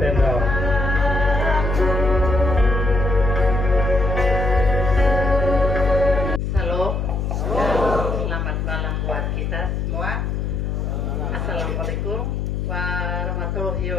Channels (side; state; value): left; noise; hum, 1 dB below the sound